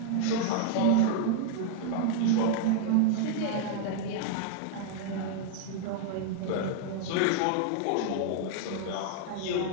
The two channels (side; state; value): both; different; correlation -0.01